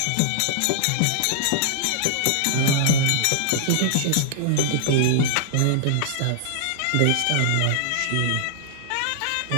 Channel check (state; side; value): different; both; correlation -0.01